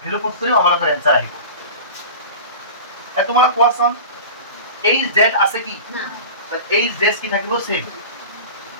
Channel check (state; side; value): inverted; both; correlation -0.34